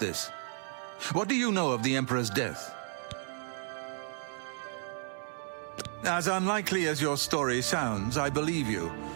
What do you know of the Emperor's death? As unlikely as your story sounds, I believe you.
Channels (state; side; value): silent; left; 56 dB below the other